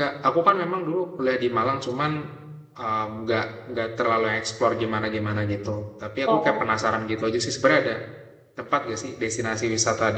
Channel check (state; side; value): identical; both; correlation 1.00